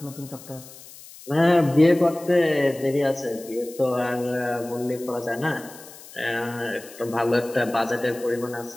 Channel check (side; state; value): left; noise; hiss, 18 dB below the sound